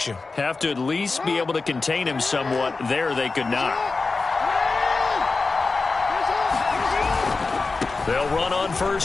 you. Have to at least be able to contain him somewhat. There they could not. They'll run on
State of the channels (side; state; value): right; quieter; 3.9 dB